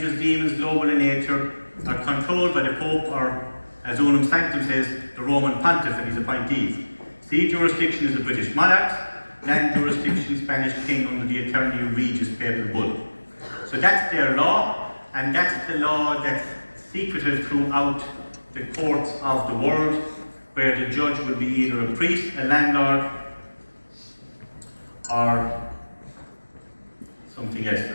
demons, global in nature, are controlled by the Pope, or as Unum Sanctum says, the Roman Pontiff and his appointees. Sea jurisdiction is the British monarchs, land jurisdiction Spanish king under the Eternally Regis Papal Bull. So that's their law, and that's the law that's secretive throughout the courts of the world, where the judge will be either a priest, a landlord, or something else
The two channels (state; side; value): inverted; both; correlation -1.00